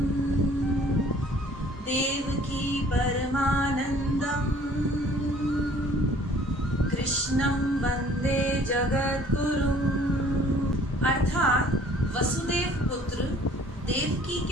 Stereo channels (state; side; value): normal; both; correlation 0.54